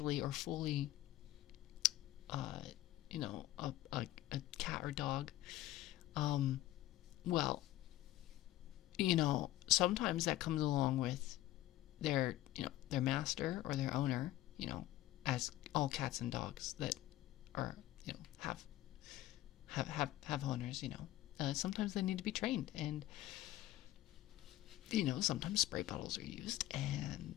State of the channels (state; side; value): quieter; right; 15.2 dB